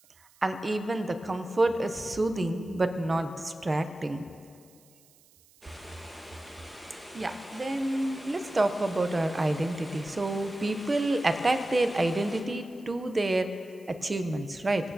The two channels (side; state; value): right; noise; hiss, 29 dB below the sound